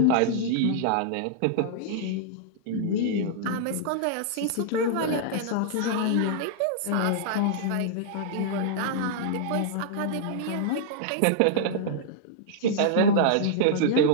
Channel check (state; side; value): different; both; correlation -0.02